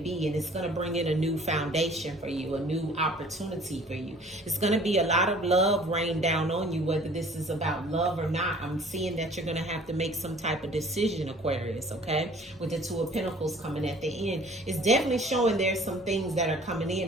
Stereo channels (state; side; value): normal; both; correlation 0.51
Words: and it's going to bring in a new foundation for you, a new opportunity for you. It's going to be a lot of love rain down on you, whether this is about love or not. I'm seeing that you're going to have to make some type of decision, Aquarius, okay? With the Two of Pentacles coming at the end. It's definitely showing there's some things that are coming